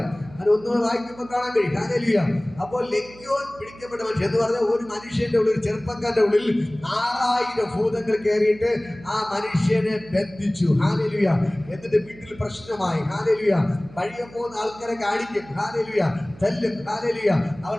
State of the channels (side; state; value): right; noise; hum, 20 dB below the sound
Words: അത് ഒന്നുകൂടെ വായിക്കുമ്പോൾ കാണാൻ കഴിയും. ഹല്ലേലൂയ. അപ്പോൾ ലെഗ്യോൻ പിടിക്കപ്പെട്ട മനുഷ്യൻ എന്ന് പറഞ്ഞാൽ ഒരു മനുഷ്യന്റെ ഉള്ളിൽ, ചെറുപ്പക്കാരുടെ ഉള്ളിൽ 6000 ഭൂതങ്ങൾ കയറിയിട്ട് ആ മനുഷ്യനെ ബന്ധിച്ചു. ഹല്ലേലൂയ. എന്നിട്ട് വീട്ടിൽ പ്രശ്നമായി. ഹല്ലേലൂയ. വഴിയെ പോകുന്ന ആൾക്കാരെ കാണിക്കും. ഹല്ലേലൂയ. തല്ലും. ഹല്ലേലൂയ. അവൻ